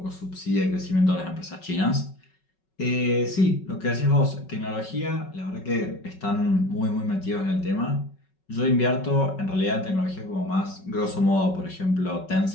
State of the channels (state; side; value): late; right; 5.4 ms